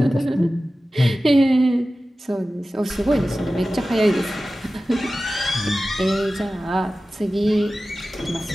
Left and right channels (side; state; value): both; normal; correlation 0.95